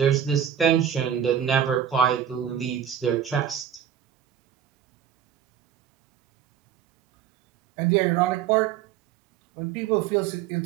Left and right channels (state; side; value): quieter; left; 9.3 dB